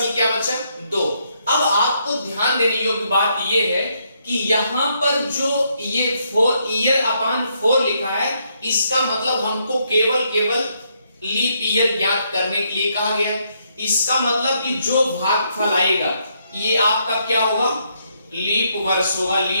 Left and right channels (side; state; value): both; inverted; correlation -0.75